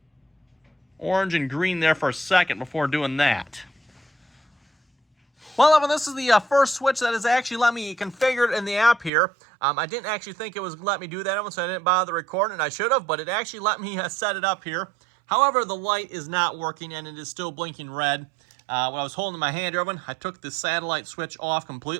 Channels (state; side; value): drops out; left; at 9.1 s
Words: orange and green there for a second before doing that. Well, everyone, this is the first switch that has actually let me configure it in the app here. I didn't actually think it was let me do that, everyone, so I didn't bother recording it. I should have, but it actually let me set it up here. However, the light is not working, and it is still blinking red. When I was holding my hand, everyone, I took the satellite switch off